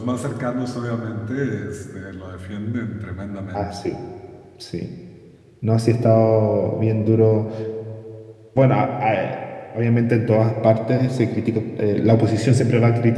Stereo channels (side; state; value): both; identical; correlation 1.00